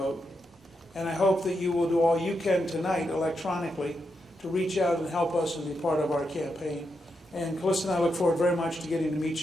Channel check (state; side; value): normal; both; correlation 0.84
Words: And I hope that you will do all you can tonight electronically to reach out and help us and be part of our campaign. And Calista and I look forward very much to getting to